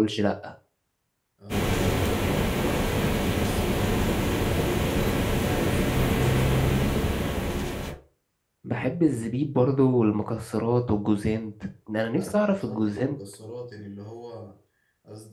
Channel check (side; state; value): both; identical; correlation 1.00